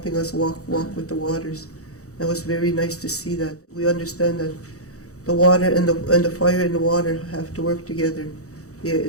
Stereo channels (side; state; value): right; late; 0.65 ms